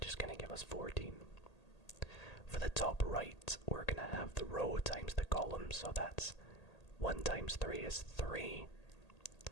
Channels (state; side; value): late; right; 1.8 ms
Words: is going to give us 14. For the top right, we're going to have the row times the column. So that's 1 times 3 is 3.